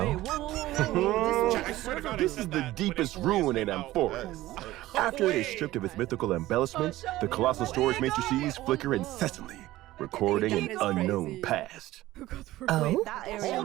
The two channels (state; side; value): quieter; left; 16.4 dB